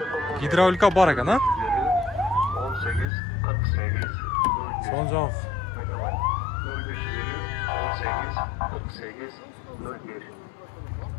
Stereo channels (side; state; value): right; drops out; at 3.1 s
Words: Гидравлика бар екен, а? 18 48 Son жақ. 18 48 01.